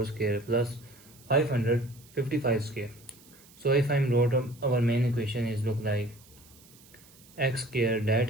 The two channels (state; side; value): noise; right; hiss, 25 dB below the sound